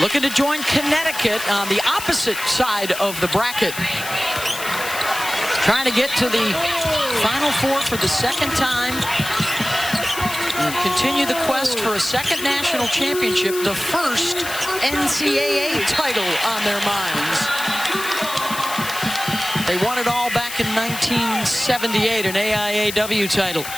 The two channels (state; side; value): noise; left; hiss, 9 dB below the sound